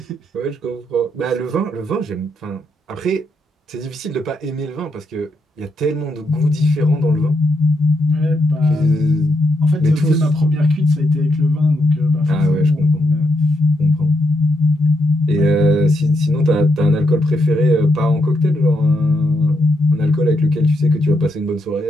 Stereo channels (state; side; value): normal; both; correlation 0.80